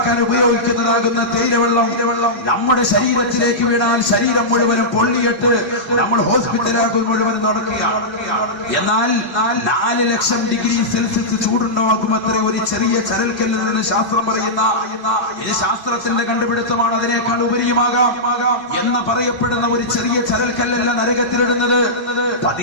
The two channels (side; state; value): left; late; 2.6 ms